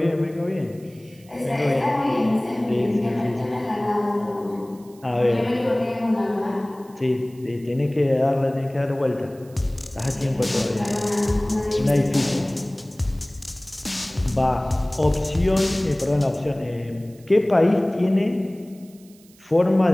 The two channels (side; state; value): right; noise; hiss, 27 dB below the sound